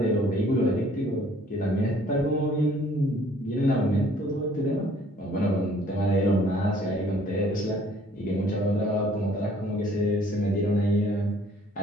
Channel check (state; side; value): normal; both; correlation 0.58